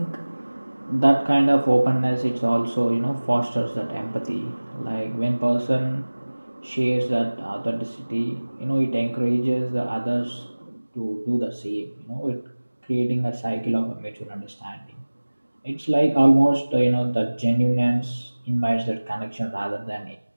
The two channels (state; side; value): inverted; both; correlation -1.00